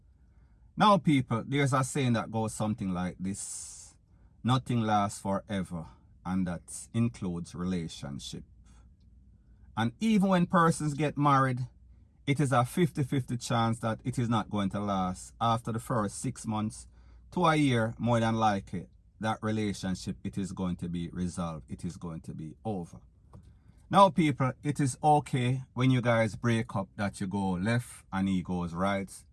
Now, people, there's a saying that goes something like this: nothing lasts forever, and that includes relationship. And even when persons get married, it is a 50-50 chance that it is not going to last. After the first 6 months to a year, more than likely, that relationship, it is going to be resolved. It is going to be over. Now, people, it is okay when you guys break up that you go left and he goes right,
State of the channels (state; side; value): identical; both; correlation 1.00